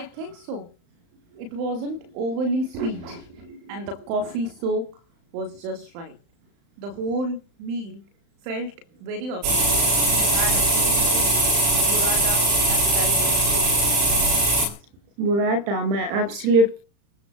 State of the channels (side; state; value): left; late; 35 ms